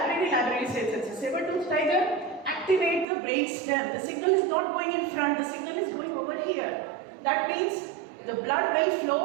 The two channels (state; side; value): drops out; left; at 3.1 s